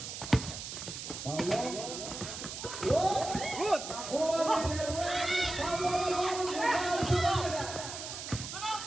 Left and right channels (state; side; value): noise; right; hiss, 8 dB below the sound